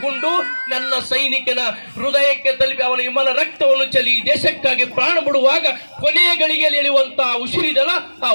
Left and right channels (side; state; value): both; inverted; correlation -1.00